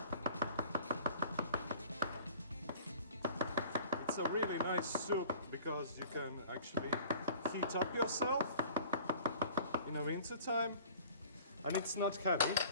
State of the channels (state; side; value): inverted; both; correlation -0.47